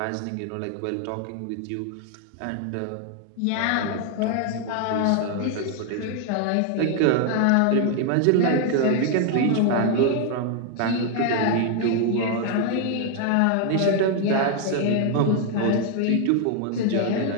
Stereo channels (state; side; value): different; both; correlation 0.00